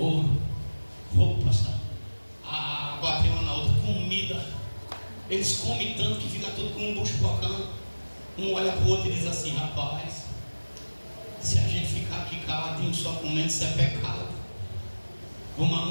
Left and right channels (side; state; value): both; inverted; correlation -1.00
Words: roupas, água tem uma na outra, comida. Eles comem tanto que fica tudo com um bucho bocando. Um olha para o outro e diz assim, rapaz, se a gente ficar aqui caladinho só comendo, isso é pecado. Vamos